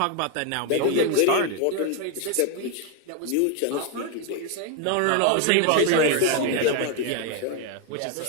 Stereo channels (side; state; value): both; different; correlation 0.01